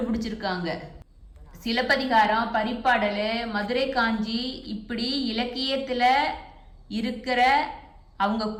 சிலப்பதிகாரம், பரிப்பாடல், மதுரை காஞ்சி இப்படி இலக்கியத்தில் இருக்கிற அவங்க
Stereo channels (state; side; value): identical; both; correlation 1.00